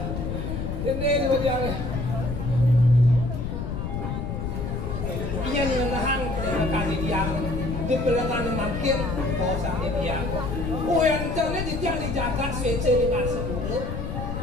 ini bagian. Ia ni nahang kali dia di pelengan makin bosan dia. Oh yang terlihat dia dijaga swece dengan sepuluh.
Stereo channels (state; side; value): noise; left; rumble, 4 dB below the sound